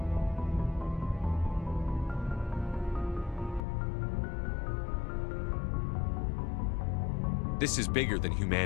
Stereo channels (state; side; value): drops out; right; at 3.6 s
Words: This is bigger than